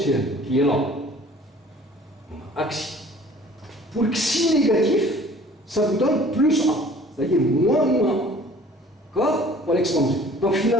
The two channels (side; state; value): both; normal; correlation 0.50